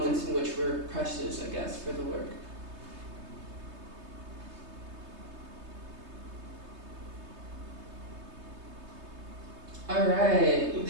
in which were precious, I guess, for the work. All right.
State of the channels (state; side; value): late; left; 3.3 ms